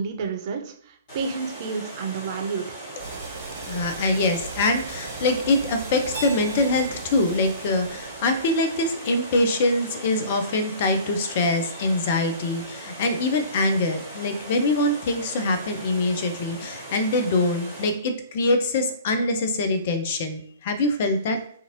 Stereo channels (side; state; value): both; inverted; correlation -0.45